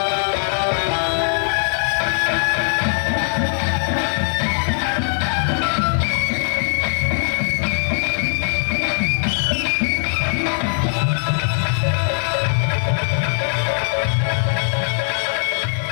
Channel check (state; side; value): silent; right; digital silence